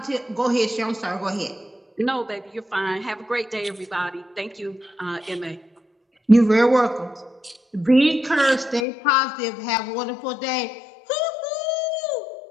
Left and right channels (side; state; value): right; drops out; at 8.8 s